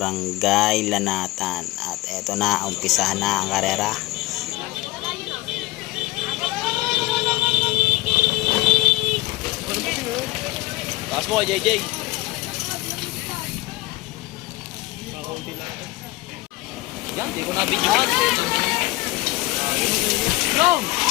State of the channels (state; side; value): quieter; right; 19.7 dB